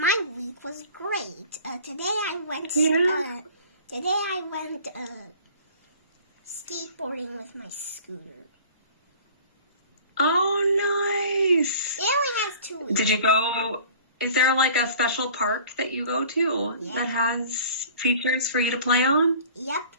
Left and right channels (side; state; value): both; inverted; correlation -0.47